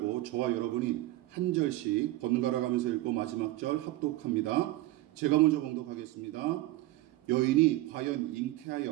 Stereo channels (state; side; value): quieter; left; 17.2 dB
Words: 저와 여러분이 한 절씩 번갈아 가면서 읽고 마지막 절 합독합니다. 제가 먼저 봉독하겠습니다. 여인이 과연